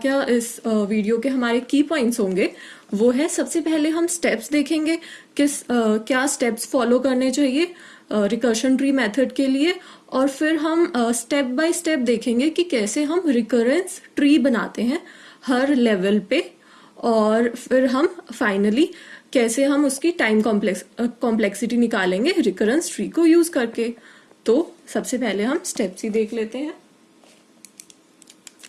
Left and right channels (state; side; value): identical; both; correlation 1.00